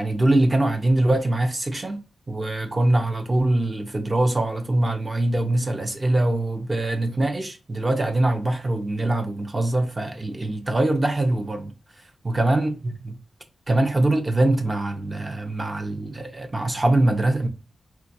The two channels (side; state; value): both; normal; correlation 0.96